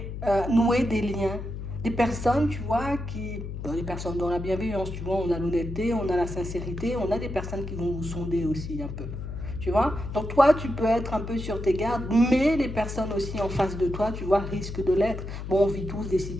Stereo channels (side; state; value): left; noise; hum, 7 dB below the sound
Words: nouer des liens. Des personnes, tu vois, des personnes dans la bienveillance, tu vois, on a l'honnêteté, on a la sincérité, on a des personnes qui vont vous sonder aussi un peu. Tu vois? Donc toi, tu peux être un peu sur tes gardes, mais les personnes aussi en face de toi, tu vois, risquent de l'être. Bon, on vit tous des